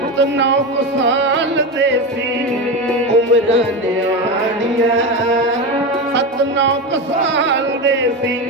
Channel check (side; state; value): both; normal; correlation 0.19